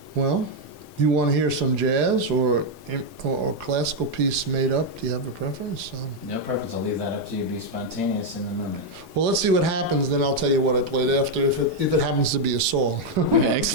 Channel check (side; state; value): both; normal; correlation 0.01